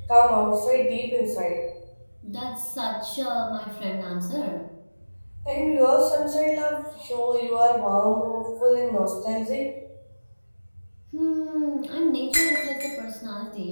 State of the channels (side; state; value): both; inverted; correlation -1.00